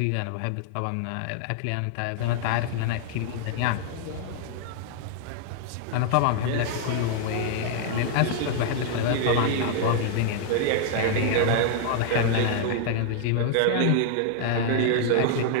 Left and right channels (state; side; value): different; both; correlation -0.01